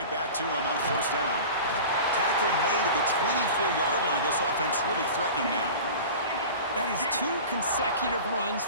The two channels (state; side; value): inverted; both; correlation -0.36